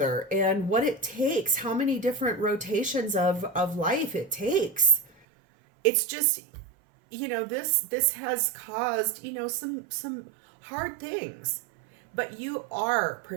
and what it takes, how many different rotations of life it takes. It's just, this has caused, some hard things, but you are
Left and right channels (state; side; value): drops out; left; at 5.1 s